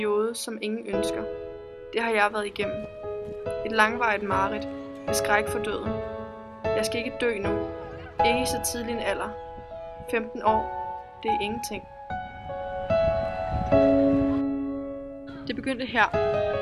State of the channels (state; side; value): identical; both; correlation 1.00